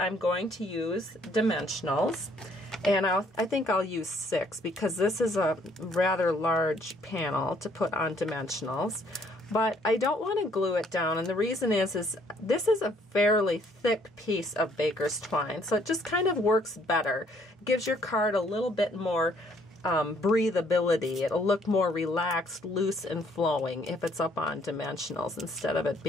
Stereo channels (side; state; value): both; normal; correlation 0.64